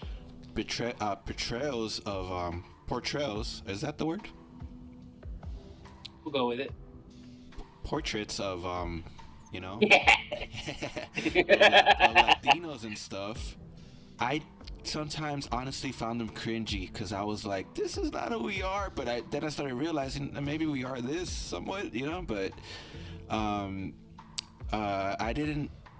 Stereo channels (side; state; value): both; identical; correlation 1.00